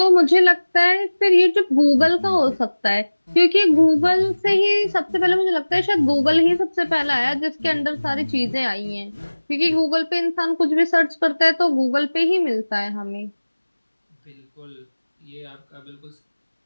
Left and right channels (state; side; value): inverted; both; correlation -1.00